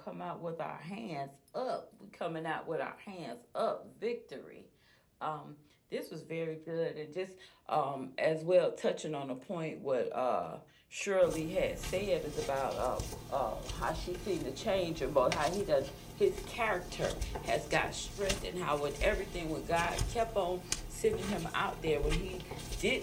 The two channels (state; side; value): identical; both; correlation 1.00